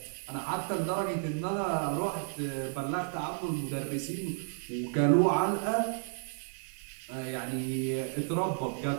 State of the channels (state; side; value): silent; left; digital silence